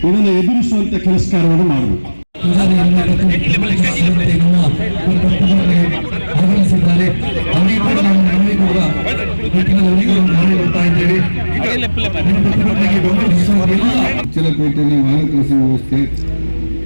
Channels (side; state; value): both; inverted; correlation -1.00